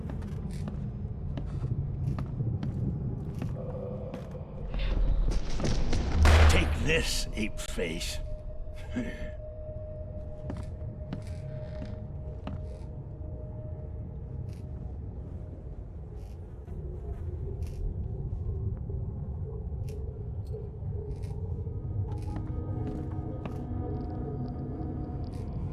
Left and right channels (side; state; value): both; identical; correlation 1.00